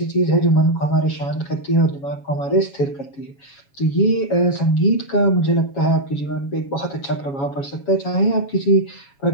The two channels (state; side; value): late; right; 7.2 ms